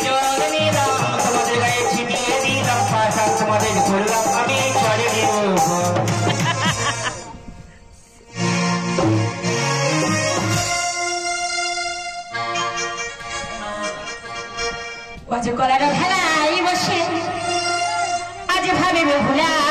জল নিলাম তোমাদের গায়ে ছিটিয়ে দিলাম পাশা তোমাদের করলাম আমি চলে দিব বাজে কলার ভেলাই বসে আজ ভাবিবে ভুলা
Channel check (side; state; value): both; identical; correlation 1.00